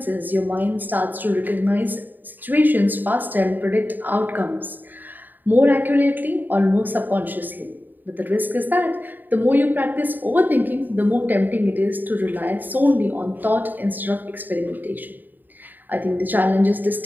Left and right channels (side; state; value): left; late; 0.089 ms